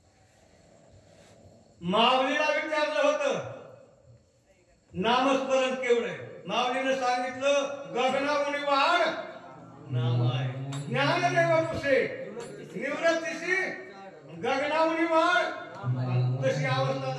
माऊलीला विचारलं होतं नामस्मरण केवढं. माऊलीनं सांगितलं गगनावणी वाढ नाम आहे. ज्ञानदेव पुसे निवृत्तीशी गगनावणी वाढ. तशी अवस्था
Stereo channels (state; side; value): identical; both; correlation 1.00